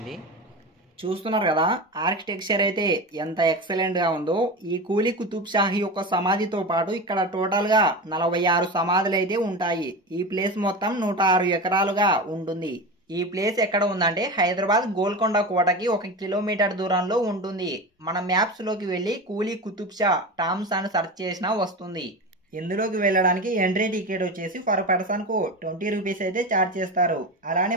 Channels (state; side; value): normal; both; correlation 0.25